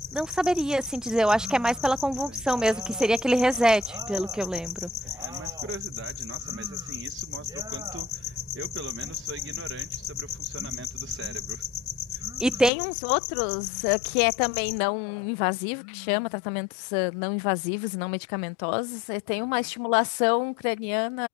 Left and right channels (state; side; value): drops out; right; at 12.7 s